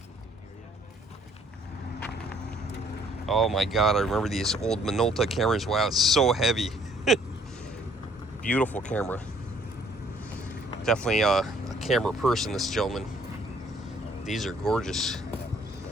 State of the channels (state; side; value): normal; both; correlation 0.62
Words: Oh my God, I remember these old Minolta cameras. Wow, it's so heavy. Beautiful camera. Definitely a camera person, this gentleman. These are gorgeous.